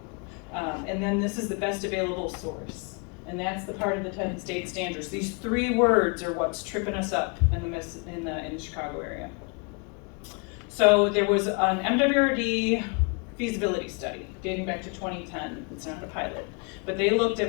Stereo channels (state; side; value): quieter; right; 32.9 dB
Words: And then this is the best available source. And that's the part of the 10 state standards. These 3 words are what's tripping us up in the Chicago area. So there was an MWRD feasibility study dating back to 2010. It's not a pilot. But they looked